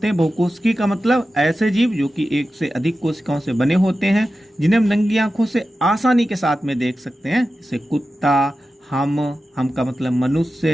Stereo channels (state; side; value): normal; both; correlation 0.93